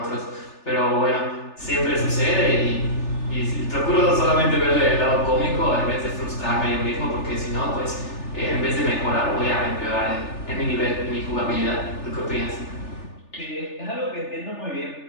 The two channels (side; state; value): right; late; 3.4 ms